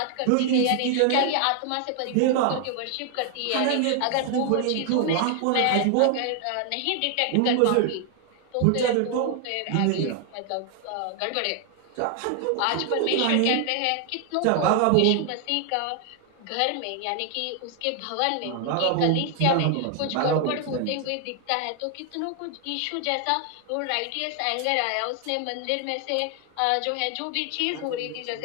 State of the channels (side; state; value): both; different; correlation 0.00